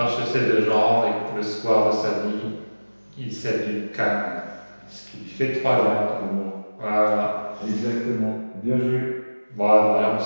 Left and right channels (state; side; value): inverted; both; correlation -1.00